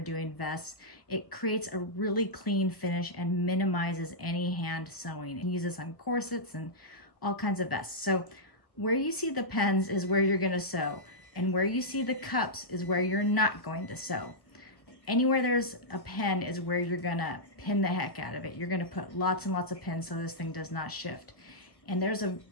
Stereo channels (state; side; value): late; right; 1.3 ms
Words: vests. It creates a really clean finish and minimizes any hand sewing. And use this on corsets and all kinds of vests. So where you see the pens is where you're going to sew, and where you see the cups is where you're not going to sew. Anywhere there's a pen is where you're going to pin the heck out of it. You're going to put lots and lots of pins so this thing does not shift. And there's a